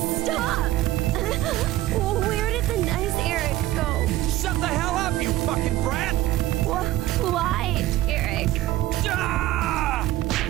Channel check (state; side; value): quieter; left; 15.7 dB